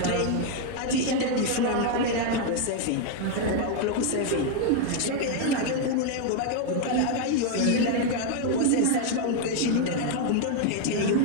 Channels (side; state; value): both; different; correlation 0.00